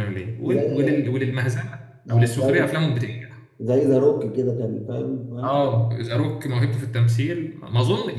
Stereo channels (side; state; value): both; identical; correlation 1.00